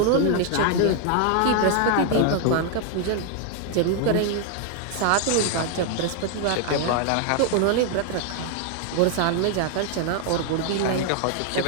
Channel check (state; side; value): different; both; correlation 0.00